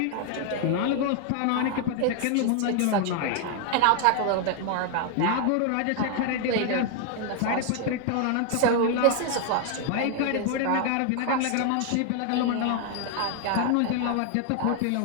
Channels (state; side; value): different; both; correlation 0.00